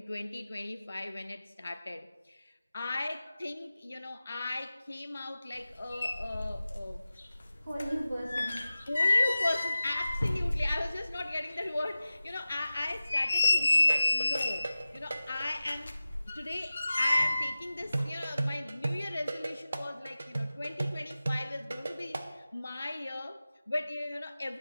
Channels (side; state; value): both; inverted; correlation -0.96